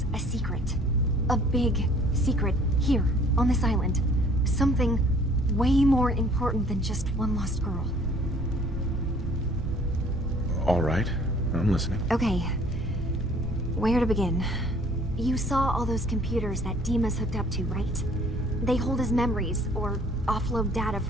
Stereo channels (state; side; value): normal; both; correlation 0.56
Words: a secret? A big secret here, on this island. Something way more important than just one lost girl. All right, I'm listening. Okay, where to begin? You saw all those computers that Dima's hooked up to, right? They hold his memories, or offload data